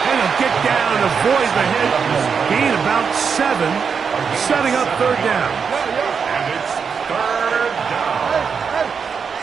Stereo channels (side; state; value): left; quieter; 6.2 dB